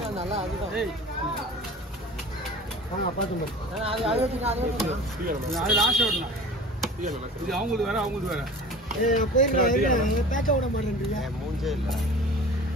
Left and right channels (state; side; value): normal; both; correlation 0.40